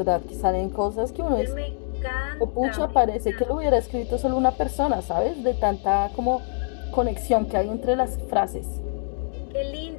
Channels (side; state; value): right; silent; digital silence